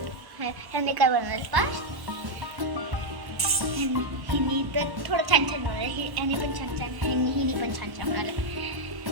ह्यांनी काय बनवलं पास? हिनी तर थोडं छान छान बनवलं. ह्याने पण छान छान, हिनी पण छान छान बनवलं.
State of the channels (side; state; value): left; late; 1.1 ms